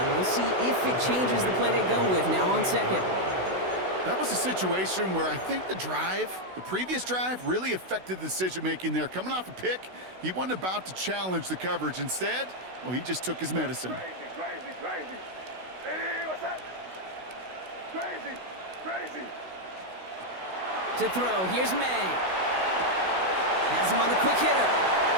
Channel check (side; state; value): left; late; 16 ms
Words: We'll see if it changes the play they go with now on second. That was a situation where I think the previous drive, really affected the decision-making there. Coming off a pick, he wasn't about to challenge the coverage. Instead, well, he just took his medicine. Crazy. Hey, what's that? Crazy. To throw, here's May. Has him on the quick hitter.